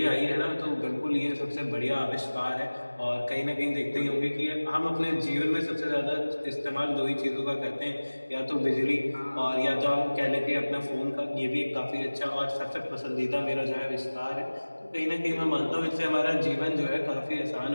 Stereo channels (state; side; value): inverted; both; correlation -1.00